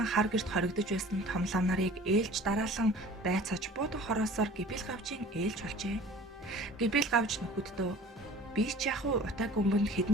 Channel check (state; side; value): normal; both; correlation 0.45